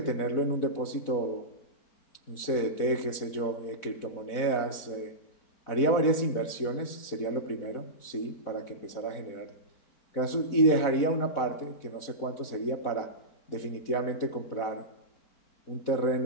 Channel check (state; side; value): late; right; 4.1 ms